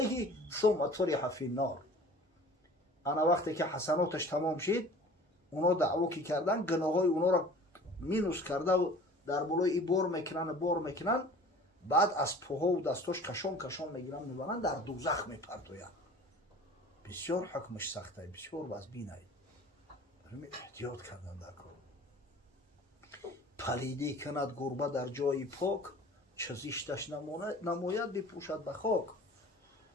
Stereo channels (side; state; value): both; normal; correlation 0.45